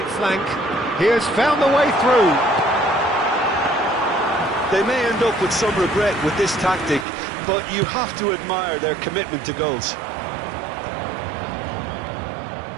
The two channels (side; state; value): left; drops out; at 7.1 s